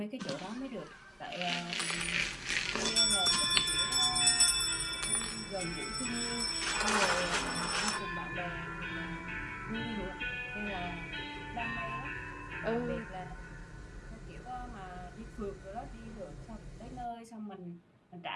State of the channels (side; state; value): both; identical; correlation 1.00